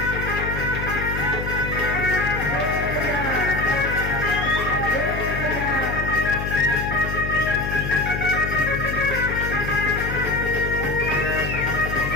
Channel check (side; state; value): left; noise; hum, 4 dB below the sound